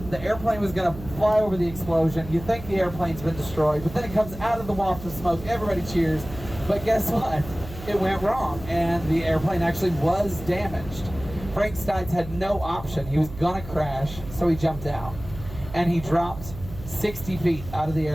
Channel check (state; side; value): noise; right; hum, 13 dB below the sound